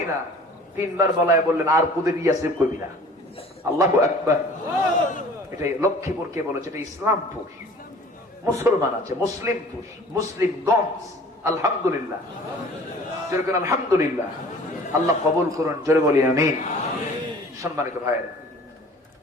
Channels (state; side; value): normal; both; correlation 0.48